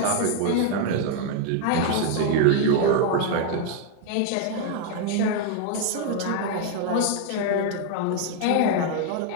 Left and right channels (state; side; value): different; both; correlation 0.00